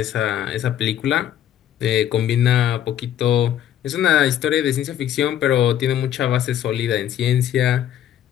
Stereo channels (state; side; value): quieter; right; 10.8 dB